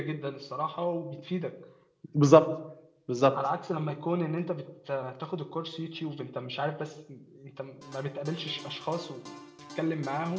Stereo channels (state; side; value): identical; both; correlation 1.00